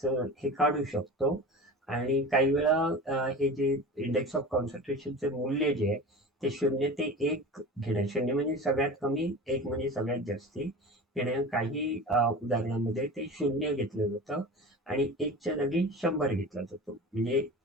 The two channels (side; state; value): both; normal; correlation 0.33